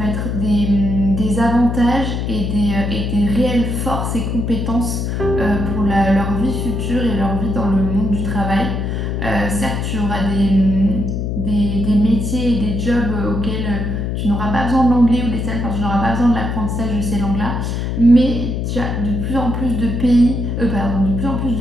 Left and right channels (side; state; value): left; noise; hum, 2 dB below the sound